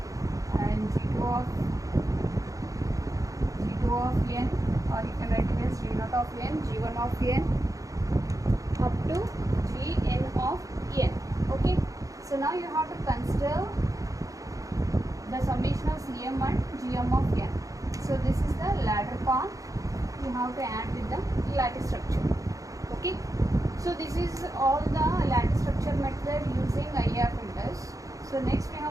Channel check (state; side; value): late; left; 0.16 ms